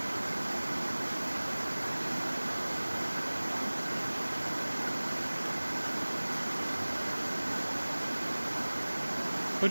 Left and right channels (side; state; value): both; inverted; correlation -1.00